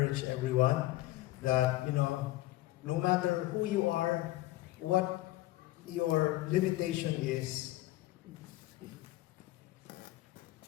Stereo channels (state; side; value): quieter; right; 17.1 dB